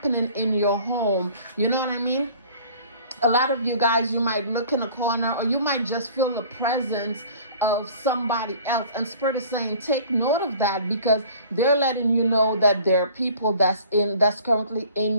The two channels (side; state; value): both; inverted; correlation -0.48